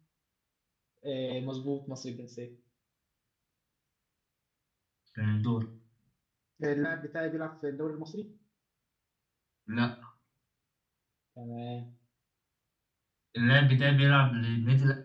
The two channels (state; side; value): identical; both; correlation 1.00